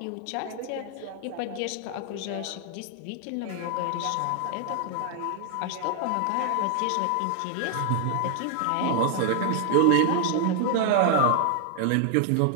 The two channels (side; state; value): both; different; correlation 0.00